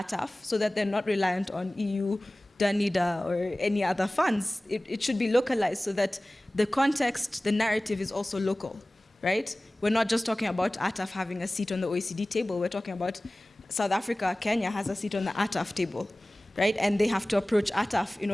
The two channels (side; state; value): both; normal; correlation 0.98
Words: so that they're not reliant on EU, DANIDA, or any other funds? It should be localized so that the context, the narrative is also local, right? We're not just talking about ATAF having a seat on the OECD table. We're talking about South Africa, Kenya has a seat on the ATAF table, right? And they have to approach ATAF in